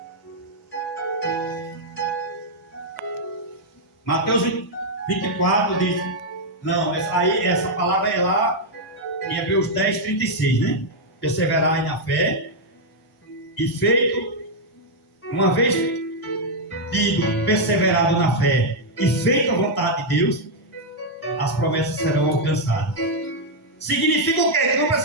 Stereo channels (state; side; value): normal; both; correlation -0.02